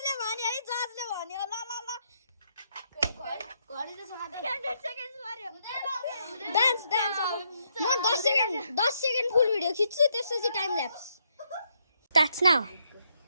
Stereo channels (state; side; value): inverted; both; correlation -0.76